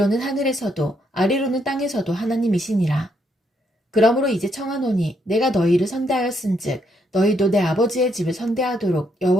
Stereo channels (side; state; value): both; normal; correlation 0.75